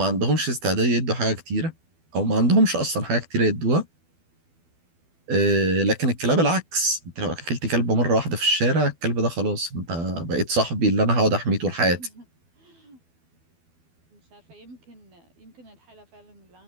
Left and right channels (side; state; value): left; late; 12 ms